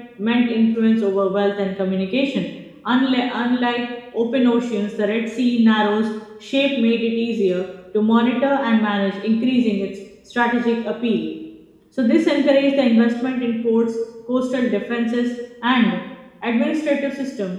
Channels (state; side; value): identical; both; correlation 1.00